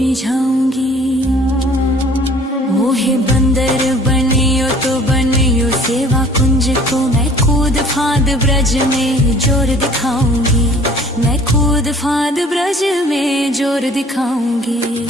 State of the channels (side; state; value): both; normal; correlation 0.52